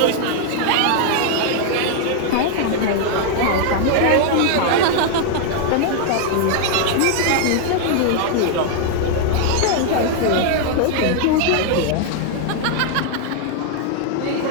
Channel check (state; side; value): different; both; correlation 0.00